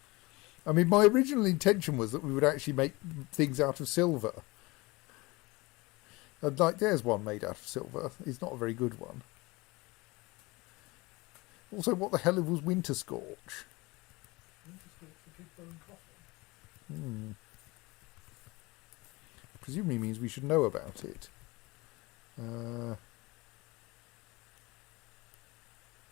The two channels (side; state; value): right; quieter; 23.2 dB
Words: I mean, my original intention was that we would actually make things out of silver. And like, there's one made out of silver. It's not a very good one. Also, what the hell was Winter Scorch? Winter Scorch, the big bone coffin. Presumably means we should know about it.